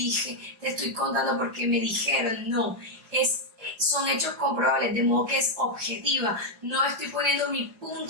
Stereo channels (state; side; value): late; left; 4.8 ms